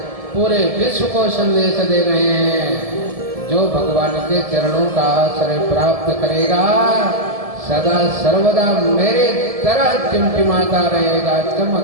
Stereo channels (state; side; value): late; left; 1.7 ms